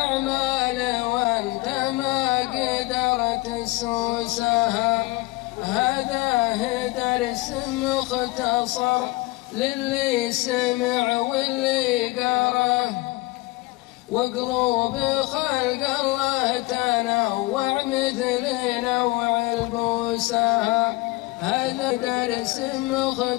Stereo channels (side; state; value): right; quieter; 22.2 dB